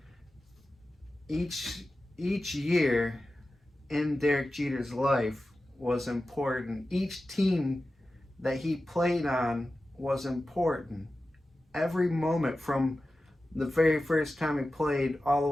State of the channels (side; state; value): both; normal; correlation 0.94